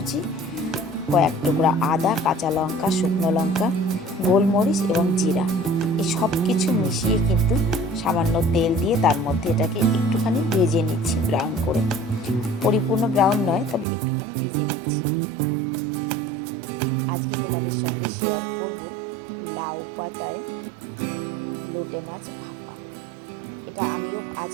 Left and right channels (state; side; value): drops out; left; at 13.9 s